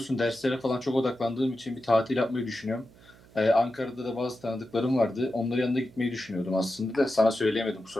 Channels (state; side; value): noise; right; hum, 25 dB below the sound